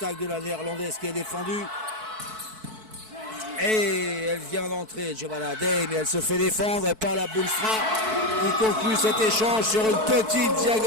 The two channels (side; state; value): left; late; 4.6 ms